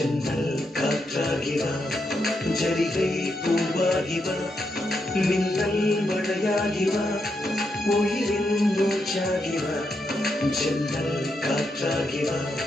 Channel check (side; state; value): both; normal; correlation 0.82